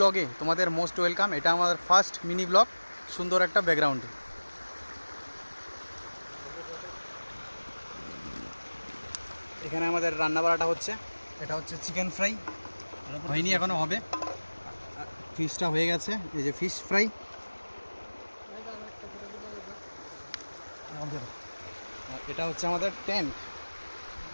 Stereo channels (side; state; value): both; inverted; correlation -1.00